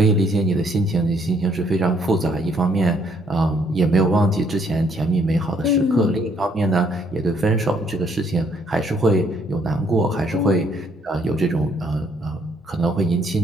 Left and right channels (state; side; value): normal; both; correlation 0.67